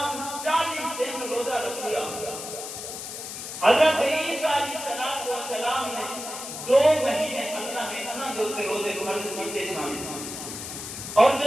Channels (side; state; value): left; noise; hiss, 8 dB below the sound